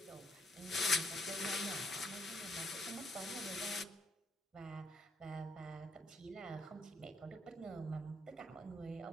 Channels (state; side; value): normal; both; correlation 0.71